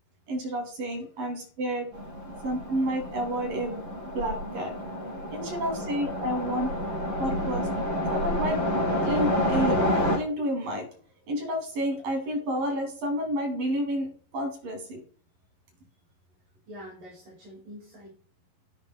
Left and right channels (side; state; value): left; late; 11 ms